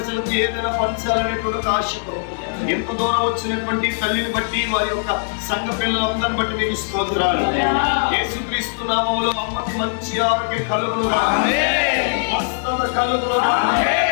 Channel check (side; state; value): right; silent; digital silence